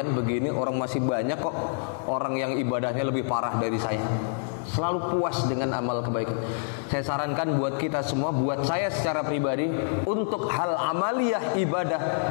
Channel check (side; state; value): right; silent; digital silence